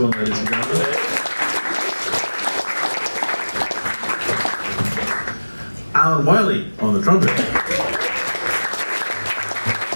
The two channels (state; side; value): inverted; both; correlation -1.00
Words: ladies and gentlemen. Alan Wiley on the trumpet.